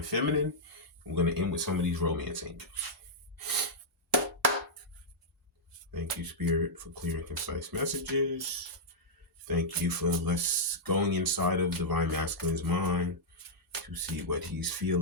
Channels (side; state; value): both; normal; correlation -0.08